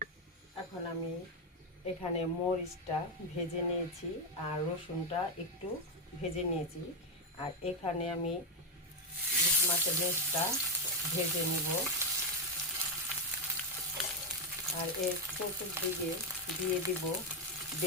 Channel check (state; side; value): normal; both; correlation 0.06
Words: এখন আমি এখানে মরিচটা ভেজে নিয়েছি আর রসুনটা একটু ভেজে নিয়েছি। আর এখানে আমি ইলিশ মাছের লেজটা ভেজে নিব। আর এর চতুর্দিকে দিয়ে দিব